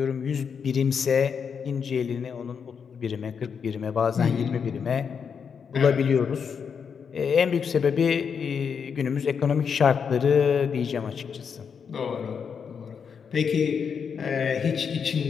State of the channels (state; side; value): quieter; right; 6.6 dB